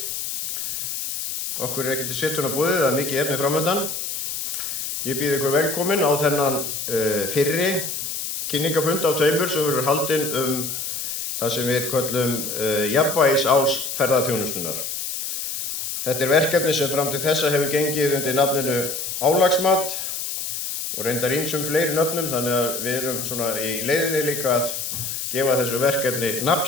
Okkur ekki til setunnar boðið, það mikið efni framöndan. Ég býð ykkur velkomin á þennan fyrri kynningafund af tveimur sem verður haldinn það sem við köllum jafnvægisás ferðaþjónustunnar. Þetta verkefni sem fram til þessa hefur gengið undir nafninu álagsmat og reyndar ýmsum fleiri nöfnum, þannig að við erum svona í leiðinni líka að gefa þessu verkefni nafn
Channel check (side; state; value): left; noise; hiss, 4 dB below the sound